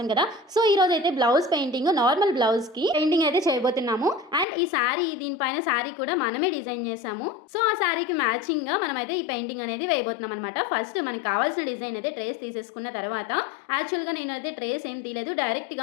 కదా. సో ఈ రోజు అయితే బ్లౌజ్ పెయింటింగ్, నార్మల్ బ్లౌజ్ కి పెయింటింగ్ అయితే చేయబోతున్నాము. అండ్ ఈ శారీ, దీనిపైన శారీ కూడా మనమే డిజైన్ చేసాము. సో ఆ శారీకి మ్యాచింగ్ గా మనం అయితే ఈ పెయింటింగ్ అనేది వేయబోతున్నాం అనమాట. ఫస్ట్ మనకి కావాల్సిన డిజైన్ అయితే ట్రేస్ తీసేసుకున్న తర్వాత, యాక్చువల్ గా నేనైతే ట్రేస్ ఏం తీయలేదు, డైరెక్ట్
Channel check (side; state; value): right; drops out; at 4.5 s